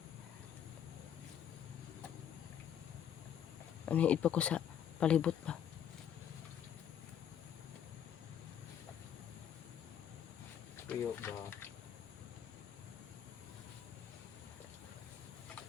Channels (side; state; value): right; quieter; 9.2 dB